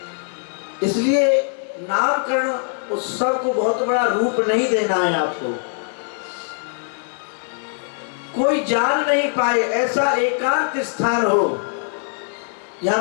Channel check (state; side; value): silent; right; 59 dB below the other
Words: इसलिए नामकरण उत्सव को बहुत बड़ा रूप नहीं देना है आपको। कोई जान नहीं पाए ऐसा एकांत स्थान हो,